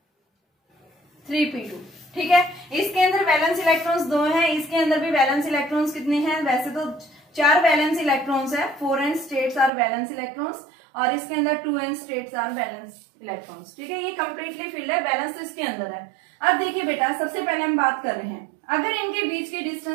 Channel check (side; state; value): left; drops out; at 9.7 s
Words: ठीक है, इसके अंदर वैलेंस इलेक्ट्रॉन्स 2 हैं, इसके अंदर भी वैलेंस इलेक्ट्रॉन्स कितने हैं, वैसे तो 4 वैलेंस इलेक्ट्रॉन्स है, 4n states are valence electrons और इसके अंदर 2n states are valence electrons. ठीक है, ये कंप्लीटली फिल्ड है, बैलेंस तो इसके अंदर है। अब देखिए बेटा, सबसे पहले हम बात कर रहे हैं, अगर इनके बीच की